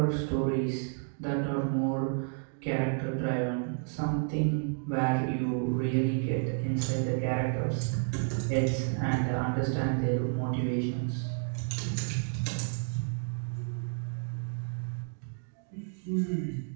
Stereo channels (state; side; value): silent; left; 57 dB below the other